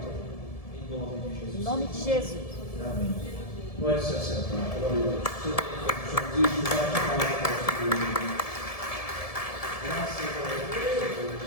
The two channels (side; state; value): right; late; 1.7 ms